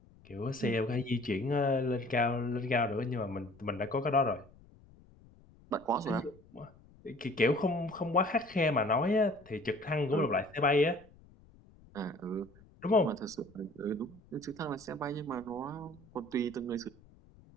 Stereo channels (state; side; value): noise; left; rumble, 25 dB below the sound